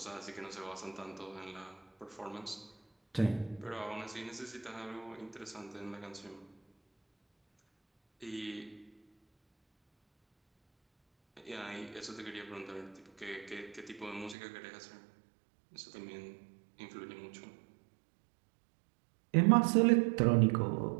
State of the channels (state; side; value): drops out; left; at 14.4 s